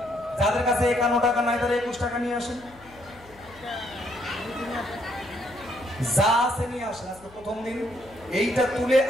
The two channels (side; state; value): left; noise; hum, 23 dB below the sound